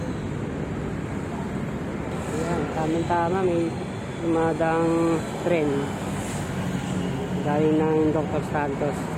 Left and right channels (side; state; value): both; identical; correlation 1.00